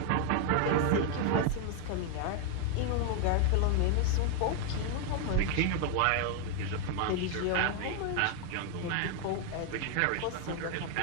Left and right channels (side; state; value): both; different; correlation 0.01